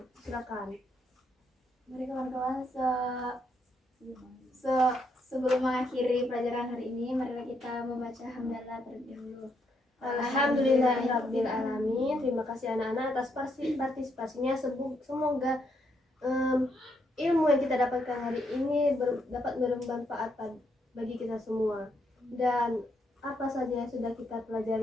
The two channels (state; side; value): normal; both; correlation 0.76